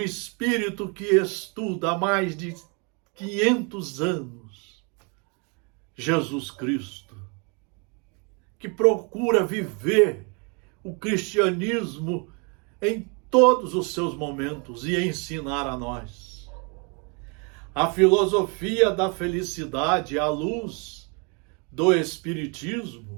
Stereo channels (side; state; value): left; quieter; 34.0 dB